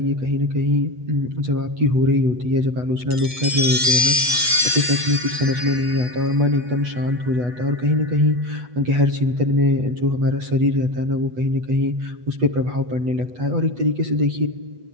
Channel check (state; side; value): late; left; 8.2 ms